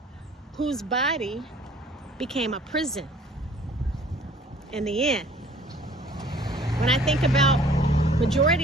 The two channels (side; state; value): both; normal; correlation 0.53